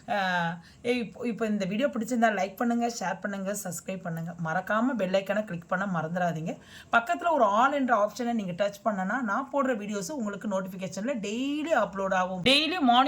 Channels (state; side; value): identical; both; correlation 1.00